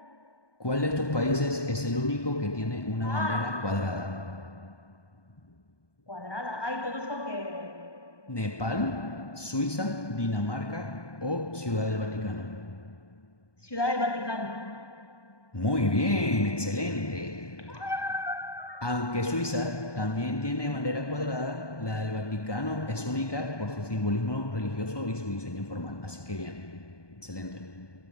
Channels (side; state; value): right; late; 1.2 ms